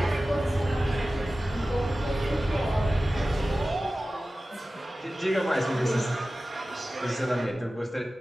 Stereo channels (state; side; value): normal; both; correlation 0.96